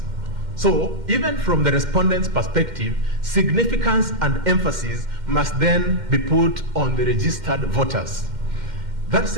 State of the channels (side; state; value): left; late; 2.1 ms